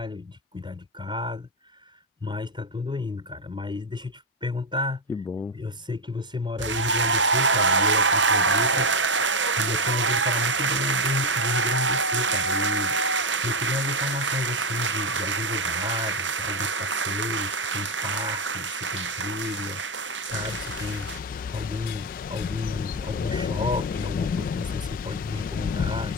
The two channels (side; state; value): both; normal; correlation 0.08